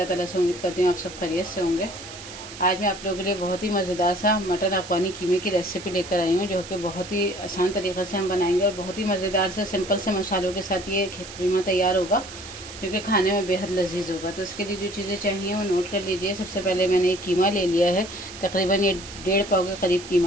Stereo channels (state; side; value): noise; right; hiss, 14 dB below the sound